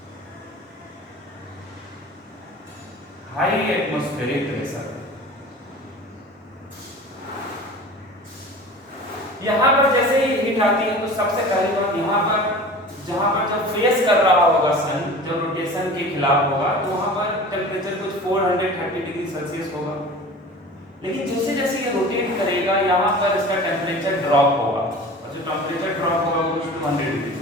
यहाँ पर जैसे ही हीट आती है तो सबसे पहली बात यहाँ पर जहाँ पर जब फेस कर रहा होगा सन, जो रोटेशन के खिलाफ होगा, तो वहाँ पर टेम्परेचर कुछ 430 डिग्री सेल्सियस होगा। लेकिन जैसे जैसे ये रोटेट करेगा यहाँ पर इसका टेम्परेचर ड्रॉप होगा, और जो टेम्परेचर ड्रॉप होगा वो कुछ 200 डिग्री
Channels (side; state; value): both; normal; correlation 0.39